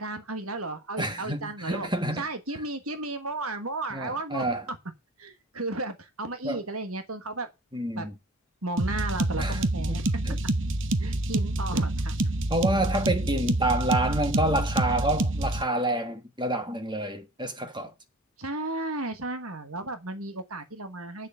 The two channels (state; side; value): normal; both; correlation 0.47